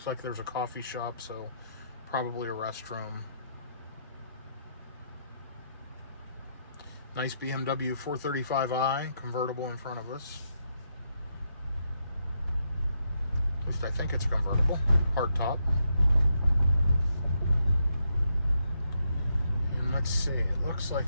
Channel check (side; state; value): both; inverted; correlation -0.79